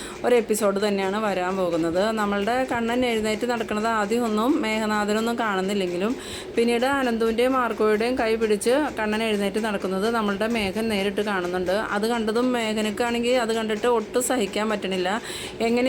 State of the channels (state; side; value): identical; both; correlation 1.00